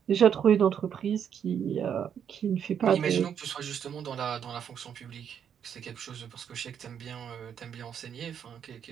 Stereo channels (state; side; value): quieter; left; 8.3 dB